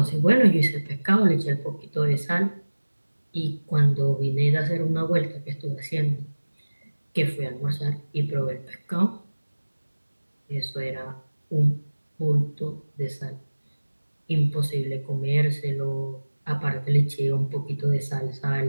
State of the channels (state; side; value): inverted; both; correlation -1.00